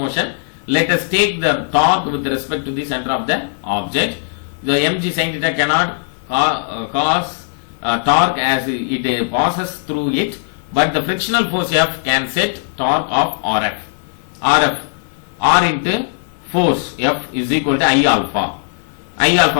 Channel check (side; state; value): right; silent; 56 dB below the other